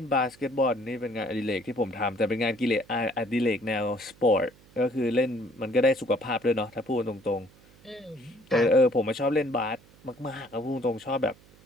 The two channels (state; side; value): noise; right; hum, 27 dB below the sound